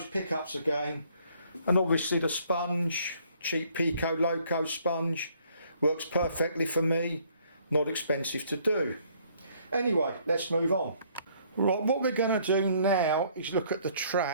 pickups again. And obviously the sponge, cheap Pico loco sponge, works perfectly for me, not expensive to do. Anyway, let's move on. Right, what we're going to do now is look at the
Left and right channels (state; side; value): inverted; both; correlation -0.63